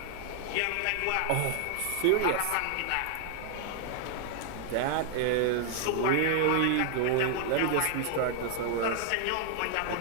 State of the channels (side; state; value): both; different; correlation 0.00